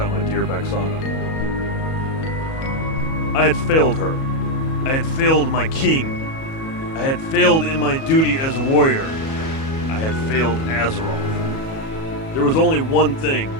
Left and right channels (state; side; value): late; right; 37 ms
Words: my dear Bexana. I had failed her. I had failed my king. I had failed in my duty as a warrior. I had failed Azeroth. There was only one thing